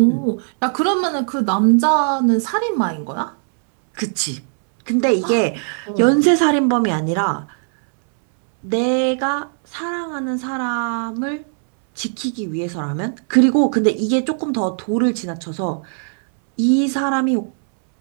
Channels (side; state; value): left; silent; 67 dB below the other